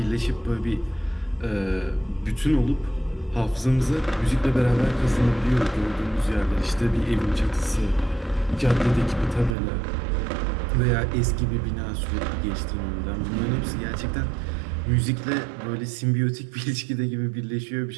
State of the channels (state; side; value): drops out; left; at 9.6 s